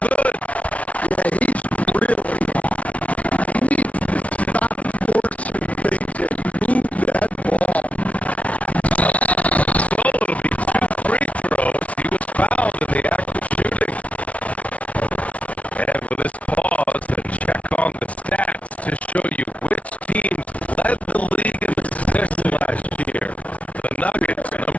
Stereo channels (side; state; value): right; late; 0.065 ms